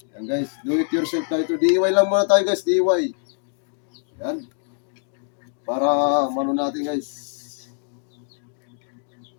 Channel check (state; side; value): silent; right; digital silence